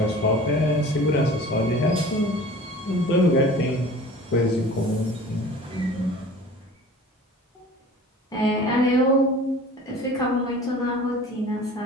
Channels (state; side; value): normal; both; correlation 0.43